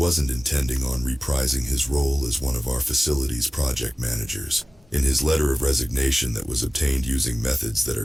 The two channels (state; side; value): normal; both; correlation 0.97